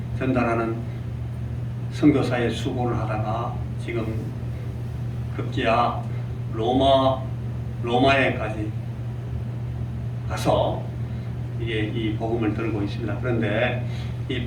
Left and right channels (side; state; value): both; identical; correlation 1.00